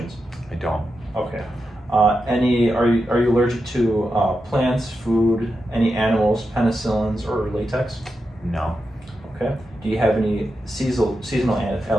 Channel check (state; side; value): normal; both; correlation 0.88